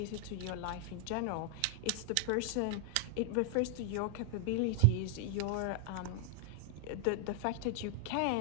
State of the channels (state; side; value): different; both; correlation 0.00